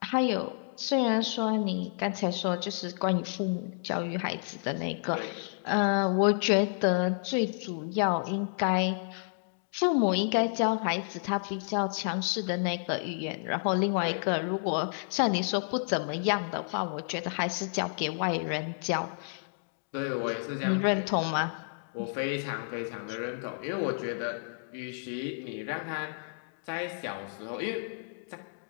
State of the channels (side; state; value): right; silent; digital silence